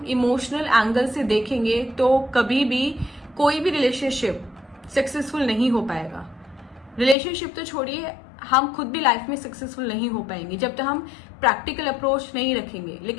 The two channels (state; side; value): drops out; right; at 7.2 s